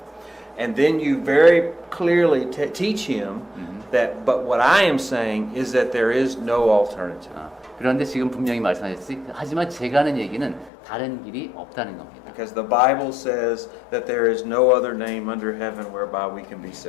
And then you very clearly teach him that, but what I am saying is that there is no alternative. 그런데 지금 분명히 말씀하셨지. 하지만 제가 하는 얘기는 다른 길이 없다는 겁니다. Because the Bible says that there is no other name under heaven whereby we can be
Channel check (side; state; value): right; drops out; at 10.7 s